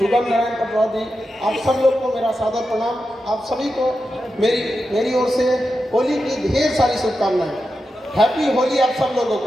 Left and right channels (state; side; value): normal; both; correlation 0.89